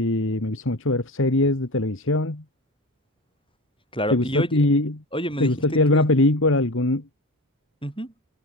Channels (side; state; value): both; normal; correlation 0.29